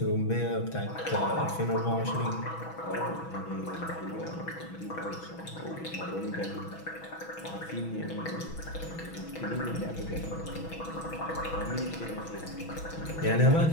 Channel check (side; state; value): right; late; 6.1 ms